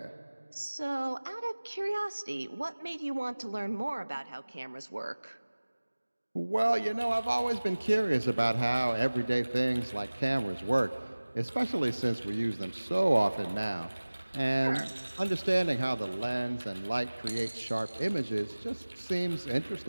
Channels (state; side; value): inverted; both; correlation -1.00